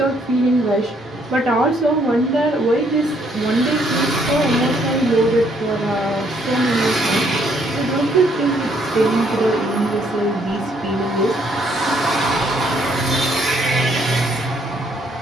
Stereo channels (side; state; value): both; normal; correlation 0.68